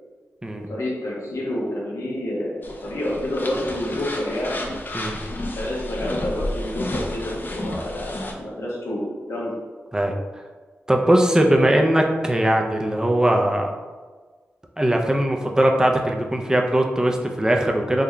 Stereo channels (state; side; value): normal; both; correlation 0.92